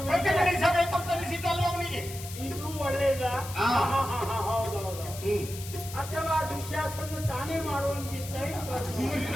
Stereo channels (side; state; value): left; noise; hiss, 12 dB below the sound